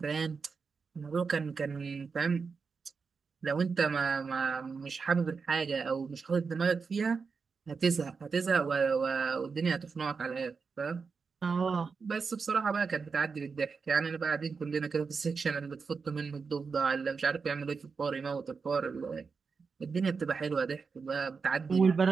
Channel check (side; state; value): left; quieter; 5.1 dB